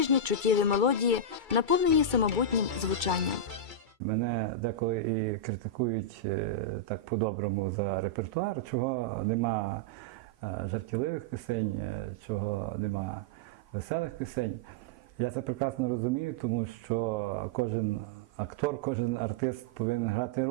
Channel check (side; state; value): left; late; 2.3 ms